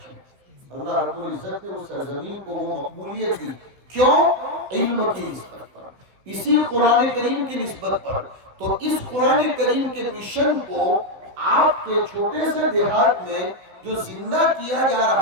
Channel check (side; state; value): left; late; 16 ms